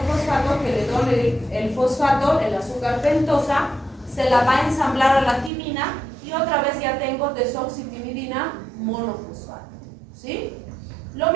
que le done el fosfato, el azúcar pentosa, se la va a ensamblar a la timina y otra vez ya tengo desoxitimidina monofosfato, ¿sí? Lo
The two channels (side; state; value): left; drops out; at 5.5 s